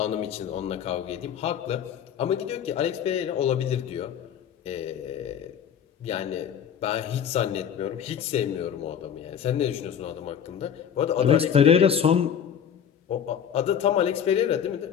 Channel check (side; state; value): right; quieter; 8.5 dB